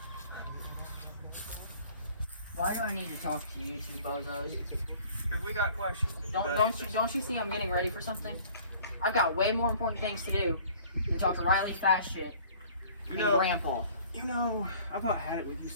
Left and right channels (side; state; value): both; inverted; correlation -0.51